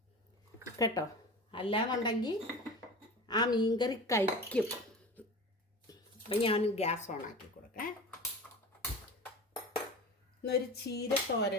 കേട്ടോ. അല്ലാന്നുണ്ടെങ്കിൽ ആ മീൻകറി കഴിക്കും. അപ്പം ഞാൻ ഗ്യാസ് ഓൺ ആക്കി കൊടുക്കാം. എന്നൊരു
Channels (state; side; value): normal; both; correlation 0.34